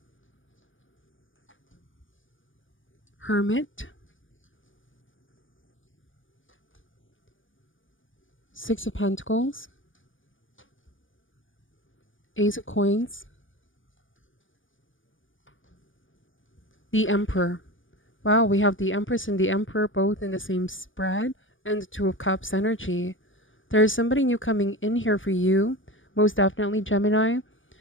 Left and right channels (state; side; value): late; right; 0.57 ms